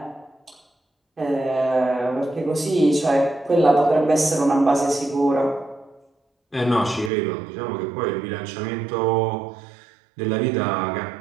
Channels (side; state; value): left; drops out; at 7.1 s